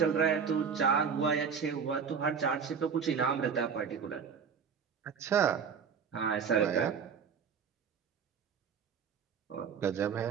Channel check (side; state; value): left; quieter; 6.6 dB